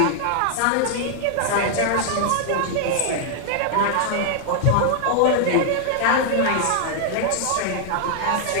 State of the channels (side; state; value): both; different; correlation -0.01